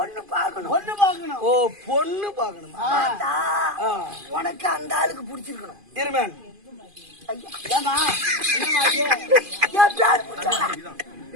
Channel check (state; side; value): late; left; 2.5 ms